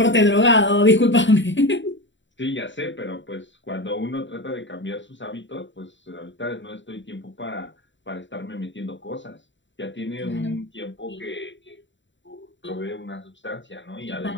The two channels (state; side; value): late; right; 0.54 ms